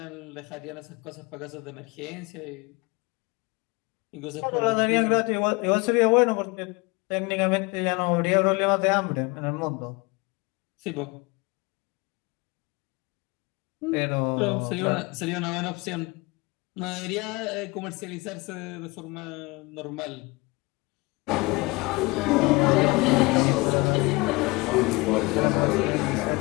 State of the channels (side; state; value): right; quieter; 25.2 dB